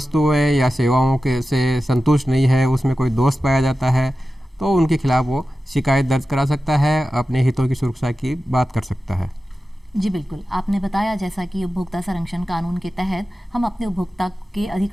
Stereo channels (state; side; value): normal; both; correlation 0.93